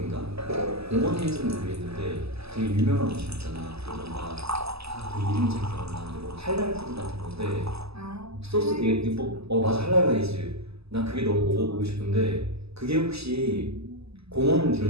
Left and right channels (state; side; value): late; left; 0.78 ms